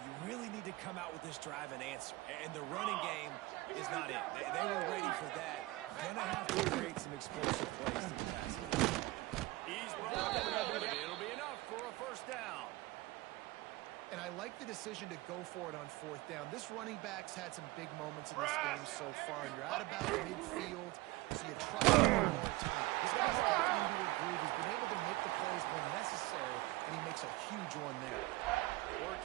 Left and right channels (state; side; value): quieter; left; 20.6 dB